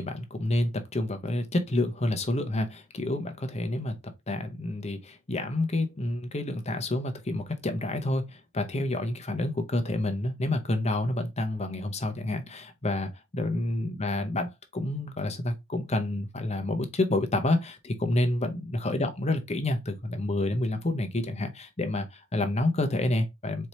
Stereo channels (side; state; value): both; normal; correlation 0.75